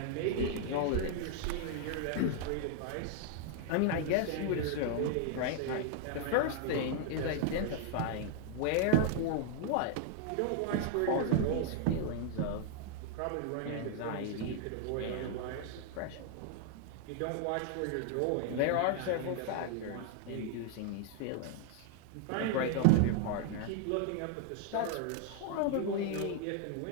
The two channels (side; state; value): both; different; correlation 0.00